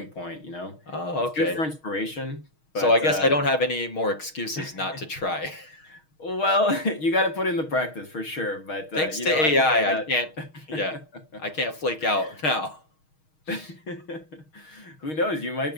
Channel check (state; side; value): late; right; 6.4 ms